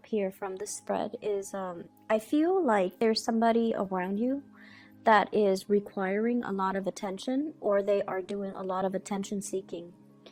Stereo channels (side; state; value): both; identical; correlation 1.00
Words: here from the spread is I feel like there's somebody around you that is requiring a lot of attention, or they are doing a lot of attention seeking.